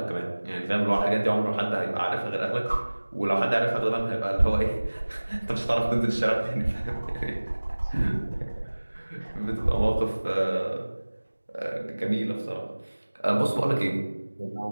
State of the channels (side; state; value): both; inverted; correlation -1.00